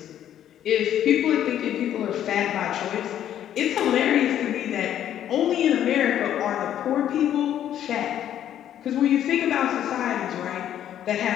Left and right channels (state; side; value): quieter; right; 10.8 dB